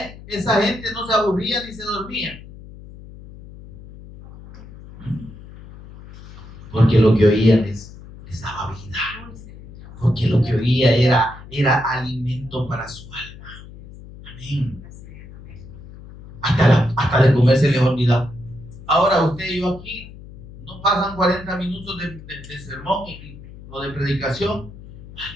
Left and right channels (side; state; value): left; noise; hum, 17 dB below the sound